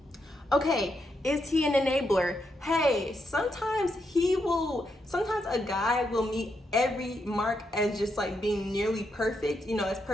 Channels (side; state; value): both; normal; correlation 0.81